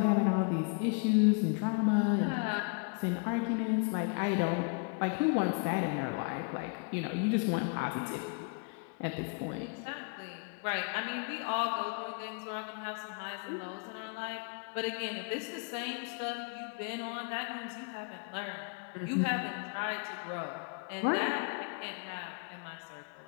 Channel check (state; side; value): quieter; right; 36.0 dB